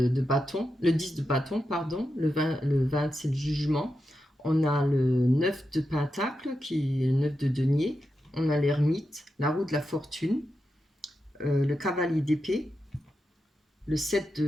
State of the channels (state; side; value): normal; both; correlation 0.88